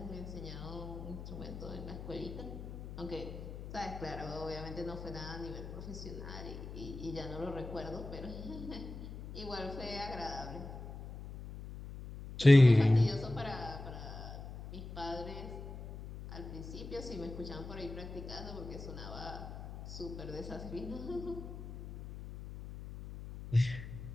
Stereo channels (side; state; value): left; noise; hum, 10 dB below the sound